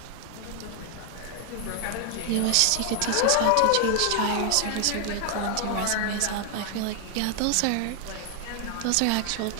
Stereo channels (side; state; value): both; different; correlation 0.00